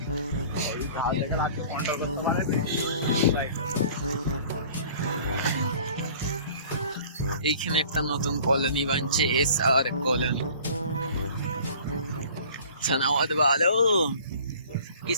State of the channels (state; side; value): inverted; both; correlation -0.48